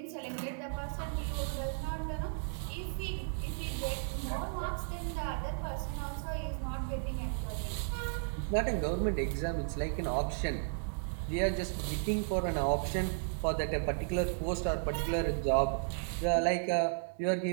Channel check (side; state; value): left; silent; digital silence